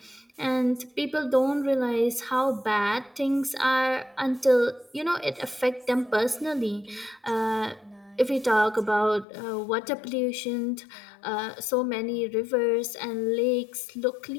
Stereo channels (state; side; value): drops out; right; at 9.2 s